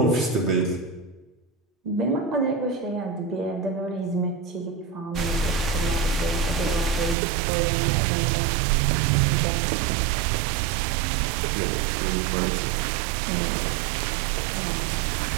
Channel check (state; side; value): drops out; left; at 7.2 s